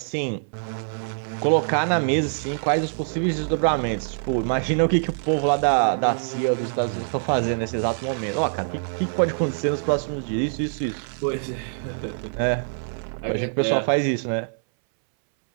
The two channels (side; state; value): left; silent; 62 dB below the other